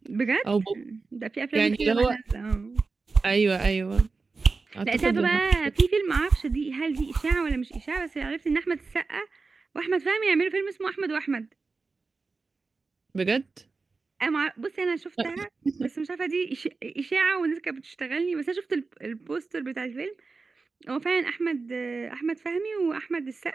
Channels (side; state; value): left; quieter; 4.2 dB